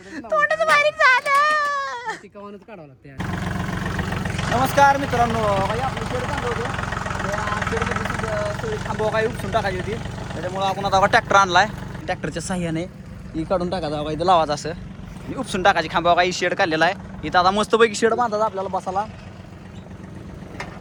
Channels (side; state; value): both; identical; correlation 1.00